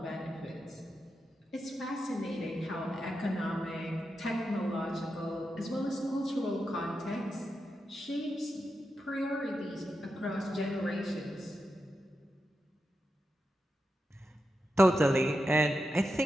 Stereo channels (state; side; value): normal; both; correlation 0.88